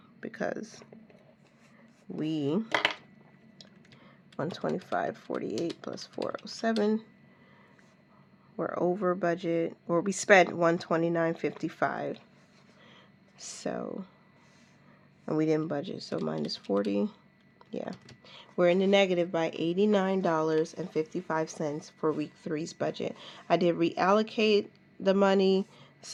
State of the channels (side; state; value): both; identical; correlation 1.00